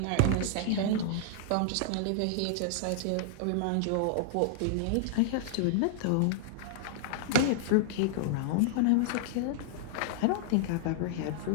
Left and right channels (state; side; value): different; both; correlation -0.01